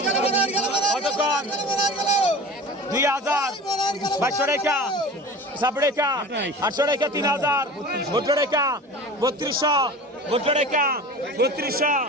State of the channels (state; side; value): normal; both; correlation 0.37